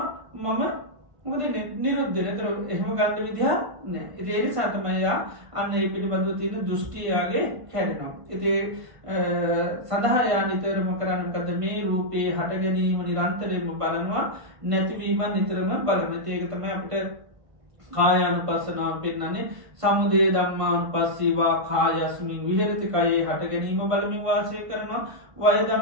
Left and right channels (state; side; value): late; left; 1.5 ms